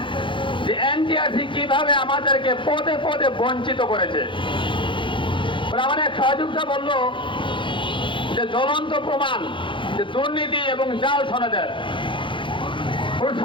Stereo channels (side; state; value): right; late; 0.24 ms